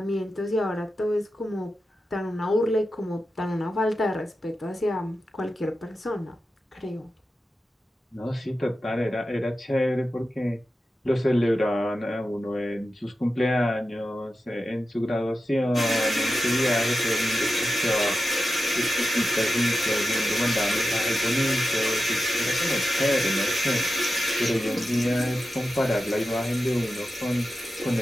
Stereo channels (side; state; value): both; normal; correlation 0.91